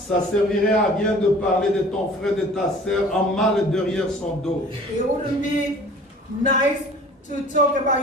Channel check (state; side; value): normal; both; correlation 0.47